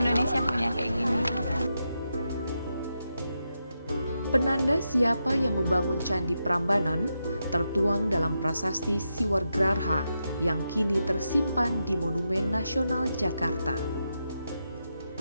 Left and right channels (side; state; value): both; inverted; correlation -0.86